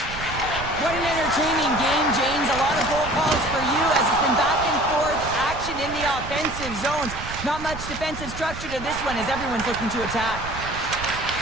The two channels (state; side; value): noise; right; rumble, 10 dB below the sound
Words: What an entertaining game, James. A lot of goal calls for you as it's been back and forth action in the offensive zones. Not much defensive structure to this one as everyone's looking to attack.